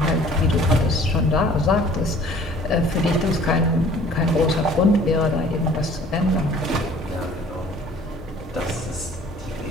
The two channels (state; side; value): normal; both; correlation 0.52